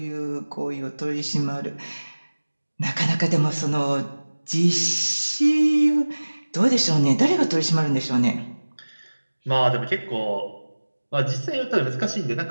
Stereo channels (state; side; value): inverted; both; correlation -1.00